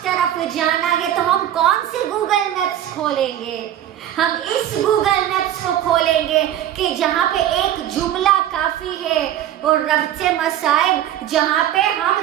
طرف جانا ہے تو ہم کون سے گوگل میپس کھولیں گے؟ ہم اس گوگل میپس کو کھولیں گے کہ جہاں پہ ایک جملہ کافی ہے اور ربط مصائب جہاں پہ ہم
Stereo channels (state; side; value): quieter; left; 11.6 dB